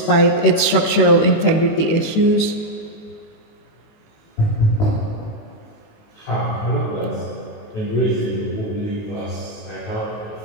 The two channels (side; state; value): right; late; 19 ms